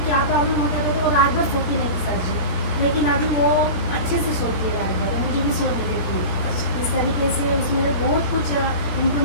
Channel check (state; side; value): late; right; 17 ms